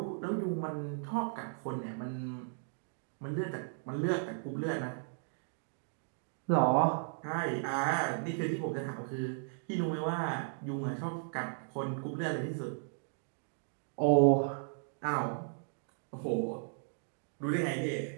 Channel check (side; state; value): left; silent; digital silence